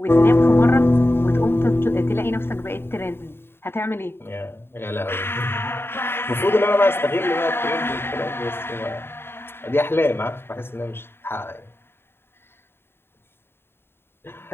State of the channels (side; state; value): right; late; 0.11 ms